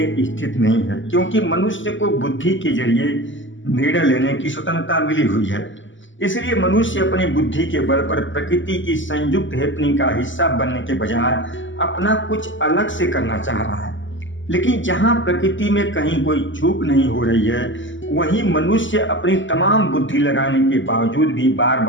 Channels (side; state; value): right; late; 0.55 ms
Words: स्थित नहीं है, क्योंकि मनुष्य को बुद्धि के जरिए निर्णय लेने की स्वतंत्रता मिली हुई है। इसलिए मनुष्य अपनी बुद्धि के बल पर प्रकृति की संयुक्त हैपनिंग का हिस्सा बनने के बजाय अपना कुछ अलग से करना चाह रहा है। लेकिन जहां प्रकृति में कहीं कोई चूक नहीं हो रही है, वहीं मनुष्य अपनी तमाम बुद्धि लगाने के बावजूद भी बार